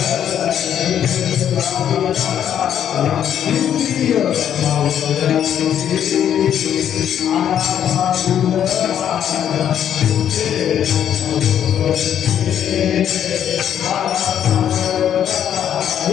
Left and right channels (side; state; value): right; quieter; 9.6 dB